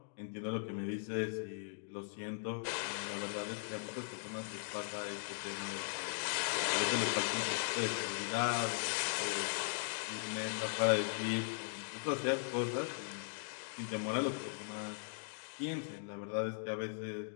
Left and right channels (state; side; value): silent; right; digital silence